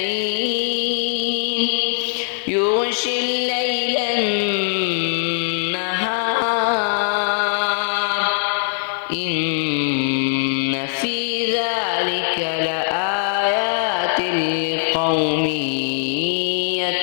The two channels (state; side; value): silent; right; 65 dB below the other